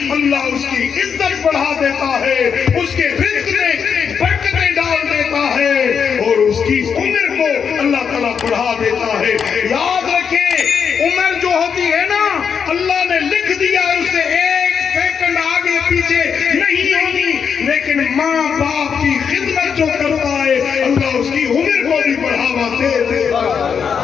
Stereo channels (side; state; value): right; quieter; 6.8 dB